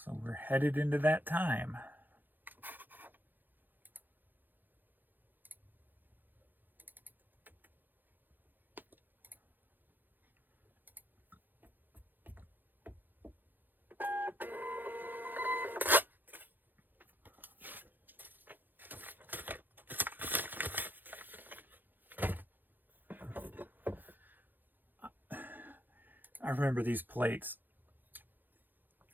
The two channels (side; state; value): left; late; 0.089 ms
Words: we're headed into that time. I remember these plates.